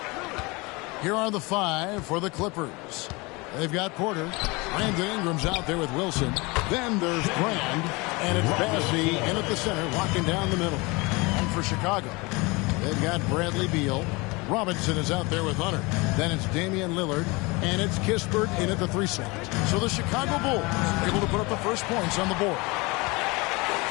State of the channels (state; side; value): quieter; right; 25.5 dB